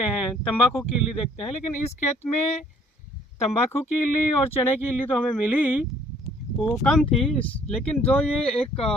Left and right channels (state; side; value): normal; both; correlation 0.59